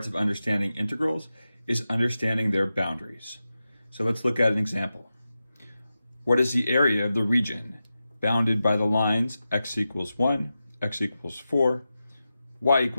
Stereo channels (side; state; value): both; inverted; correlation -0.92